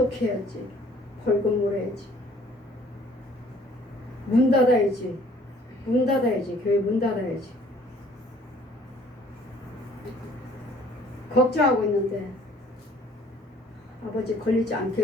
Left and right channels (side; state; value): both; normal; correlation 0.56